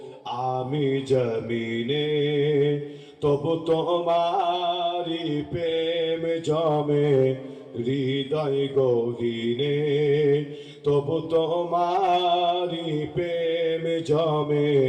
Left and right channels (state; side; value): identical; both; correlation 1.00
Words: জমিনে তবু তোমারি প্রেম জমে হৃদয় গহীনে, তবু তোমারি প্রেম জমে